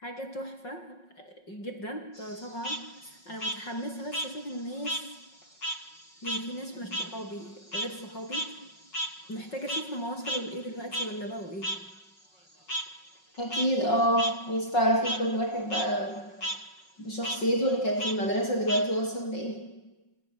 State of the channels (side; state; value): right; late; 5.5 ms